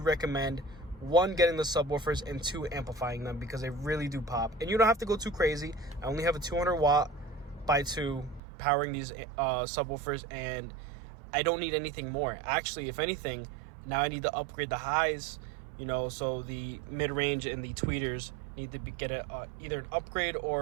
1, getting the subwoofers, and 2, amplifying them, because they really do pop. And you don't have to go too crazy. I only have a 200 watt by 2 powering these subwoofers, and I don't need anything more. Actually, if anything, now I need to upgrade the highs, so the mid-range and the tweeters need to get either an upgrade,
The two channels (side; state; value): left; drops out; at 8.4 s